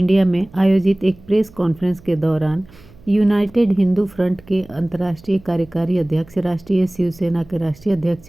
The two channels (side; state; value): right; noise; hum, 24 dB below the sound